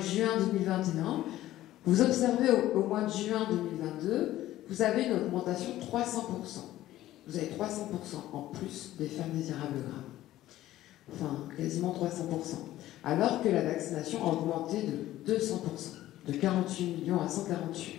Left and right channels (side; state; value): right; quieter; 14.5 dB